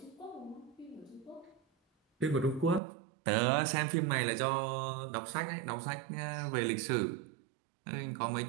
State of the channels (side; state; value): left; drops out; at 2.8 s